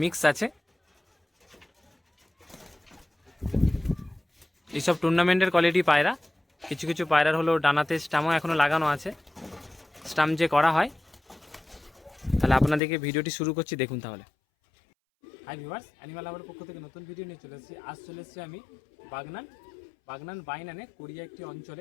মিক্স আছে। এইসব টুর্নামেন্টের কোয়ালিটি পায়রা। কিছু কিছু পায়রার হলো ডানাতে স্টামও এখনও লাগানো আছে, স্টাম যে করা হয়। তাহলে আপনাদেরকে ভিডিওটি শুরু করছি, দেখুন তাহলে। হাই ভিউয়ার্স, অ্যানিমাল লাভারের পক্ষ থেকে নতুন ভিডিও নিয়ে চলে এসেছি। আজ চলে এসেছি আমি বাগনান বাইনানে, কোরিয়া একটি অঞ্চলে।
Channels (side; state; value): right; drops out; at 12.8 s